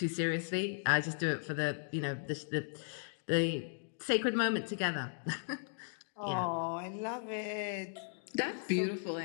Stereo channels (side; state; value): right; silent; digital silence